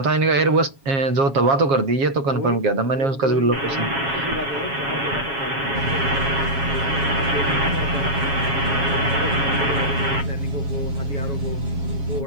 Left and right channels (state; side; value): late; left; 7.3 ms